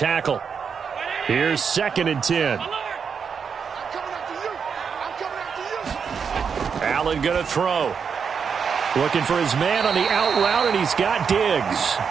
Here's 2nd and 10. Allen going to throw. Looking for his man on the out route, and he's got Diggs.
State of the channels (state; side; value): quieter; left; 6.4 dB